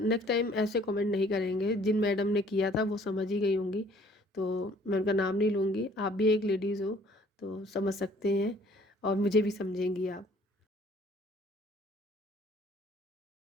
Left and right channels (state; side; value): normal; both; correlation 0.57